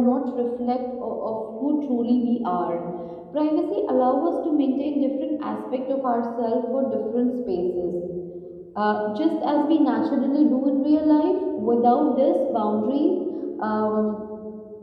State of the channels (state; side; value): identical; both; correlation 1.00